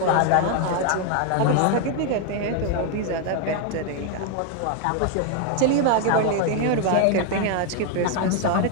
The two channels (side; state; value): both; different; correlation 0.00